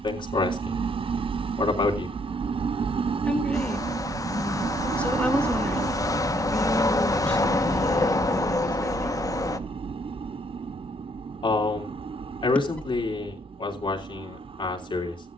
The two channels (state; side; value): normal; both; correlation 0.68